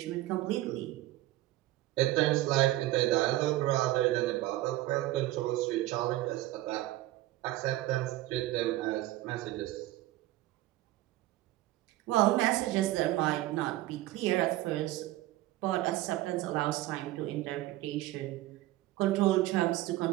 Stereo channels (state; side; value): quieter; left; 16.5 dB